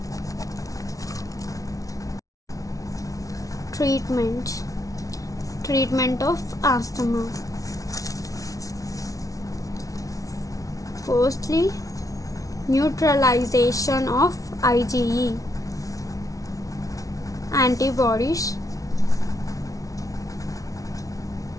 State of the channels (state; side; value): late; right; 0.17 ms